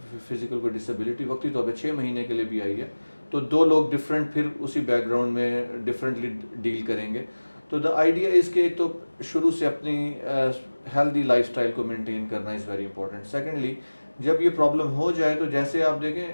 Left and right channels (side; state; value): both; inverted; correlation -1.00